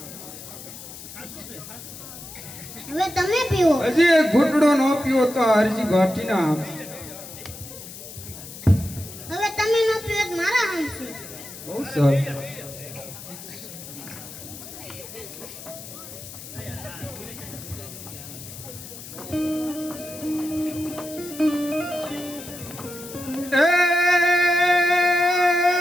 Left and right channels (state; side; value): noise; left; hiss, 13 dB below the sound